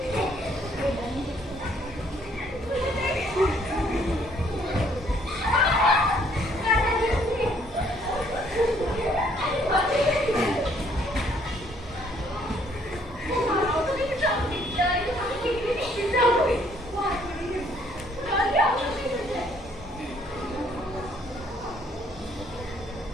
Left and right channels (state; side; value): normal; both; correlation 0.64